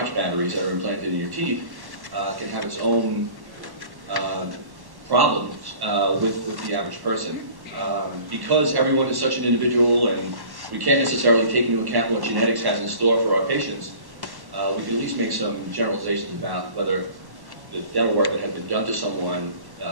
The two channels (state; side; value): late; left; 1.1 ms